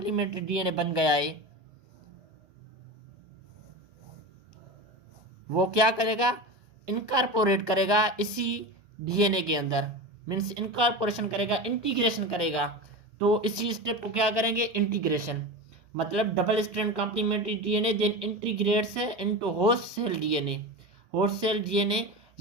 डीएनए बन गया है, वो क्या करेगा, इनकॉर्पोरेट करेगा इसी डीएनए के अंदर, मीन्स इनकॉर्पोरेशन करेगा, इंटीग्रेशन करेगा। तो इसी स्टेप को क्या करेंगे, इंटीग्रेशन, मतलब double strand complementary DNA then integrates into host cell DNA. Host cell DNA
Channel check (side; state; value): left; late; 1.2 ms